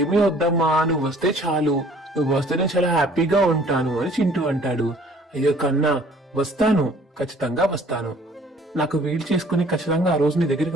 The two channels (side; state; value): both; normal; correlation 0.55